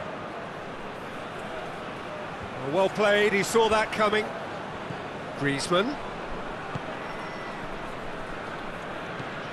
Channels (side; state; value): both; identical; correlation 1.00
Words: Well played, he saw that coming. Griezmann.